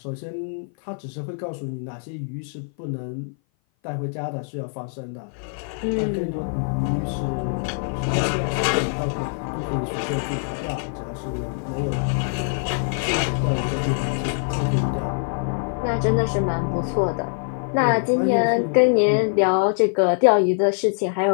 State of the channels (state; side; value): silent; right; 57 dB below the other